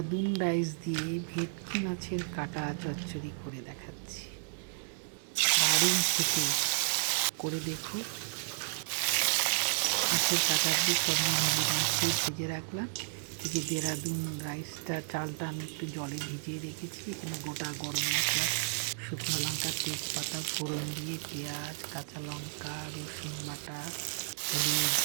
রাইস দিয়ে ভেটকি মাছের কাটা চচ্চড়ি করে দেখাচ্ছি। দারুণ খেতে, করে দেখো। মাছের কাটা দিয়ে সব হলুদ মাছ দিয়ে ভেজে রাখলাম। এই যে দেরাদুন রাইসটা, চালটা আমি একটু জলে ভিজিয়ে রেখেছি। এখানে গোটা গরম মশলা, শুকনো লঙ্কা, তেজপাতা ফোড়ন দিয়ে পেঁয়াজ, কাঁচা লঙ্কা, রসুন বাটা, হলুদ,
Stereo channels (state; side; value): silent; left; 56 dB below the other